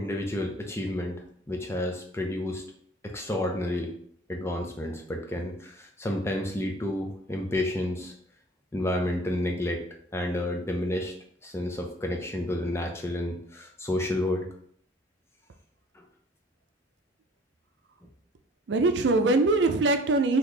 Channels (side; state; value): both; normal; correlation 0.50